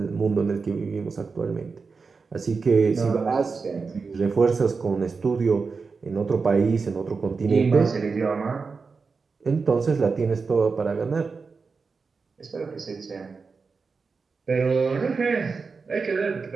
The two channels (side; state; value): left; quieter; 4.8 dB